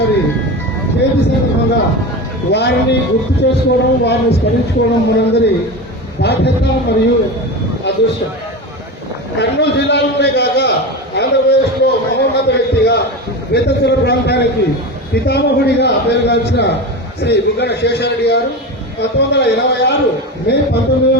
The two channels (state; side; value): normal; both; correlation 0.25